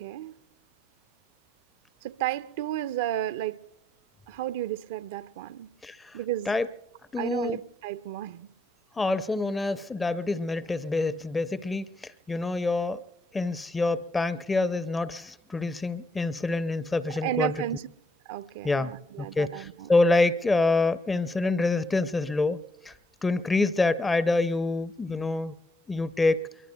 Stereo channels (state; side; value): normal; both; correlation 0.76